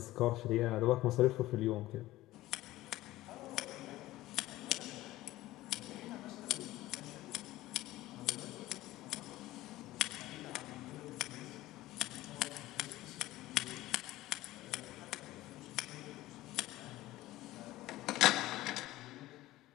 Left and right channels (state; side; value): quieter; right; 16.7 dB